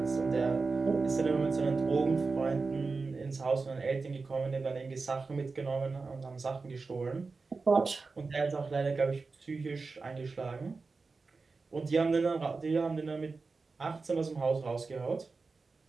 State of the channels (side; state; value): left; quieter; 4.2 dB